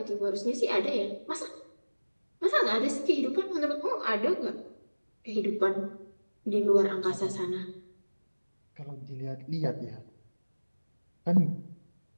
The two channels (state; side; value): inverted; both; correlation -1.00